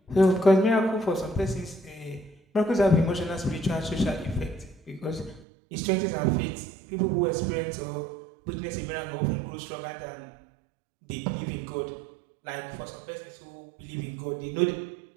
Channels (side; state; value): left; drops out; at 5.5 s